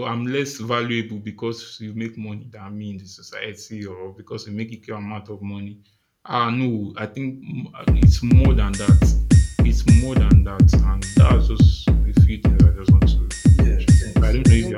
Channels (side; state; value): both; identical; correlation 1.00